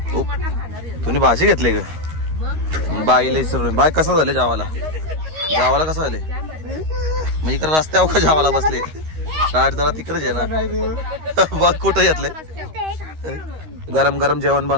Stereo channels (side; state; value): left; late; 13 ms